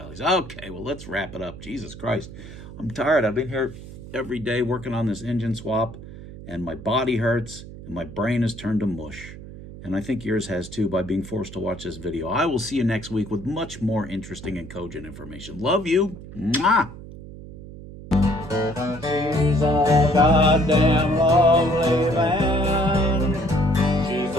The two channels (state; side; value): noise; right; hum, 14 dB below the sound